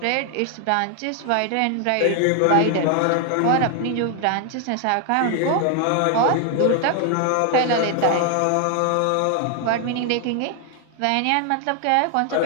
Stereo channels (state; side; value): different; both; correlation 0.00